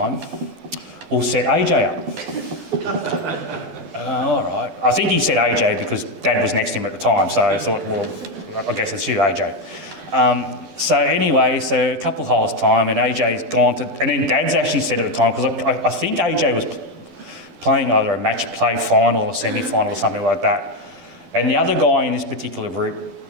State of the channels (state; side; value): late; left; 12 ms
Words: we'll set AJ up. All right. I think he said AJ because Dad was next to him at the time, so I thought, well, I guess it's you, AJ. So anyway, so a couple of holes' time, and AJ's gone to... And then Dad's actually said at the time, because I think AJ was playing either a match play final or semi-final or something like that. And the other guy in this particular group,